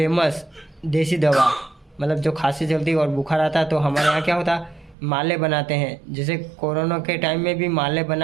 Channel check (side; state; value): left; drops out; at 5.0 s